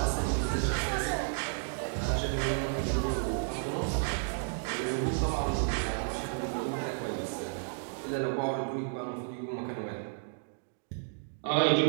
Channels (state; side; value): silent; left; digital silence